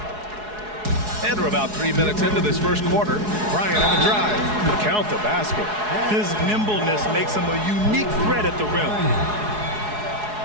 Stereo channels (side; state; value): left; late; 4.7 ms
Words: And we're about 3 minutes into this first quarter. Bryant on the drive. Count the basket. His nimbleness makes him a unique threat at the rim.